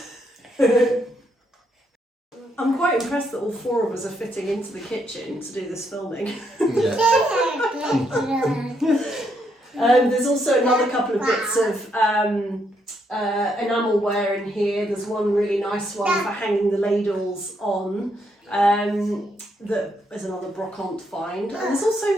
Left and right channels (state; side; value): normal; both; correlation 0.76